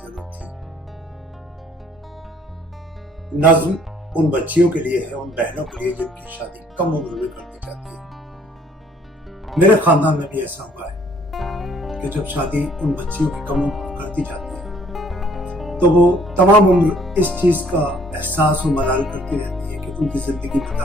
जरूरत थी। नज़्म उन बच्चियों के लिए है, उन बहनों के लिए जिनकी शादी कम उम्र में कर दी जाती है। मेरे खानदान में भी ऐसा हुआ है कि जब शादी उन बच्चियों की कम उम्र में कर दी जाती है तो वो तमाम उम्र इस चीज का एहसास और मलाल करती रहती है कि उनकी जिंदगी में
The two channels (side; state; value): both; normal; correlation 0.60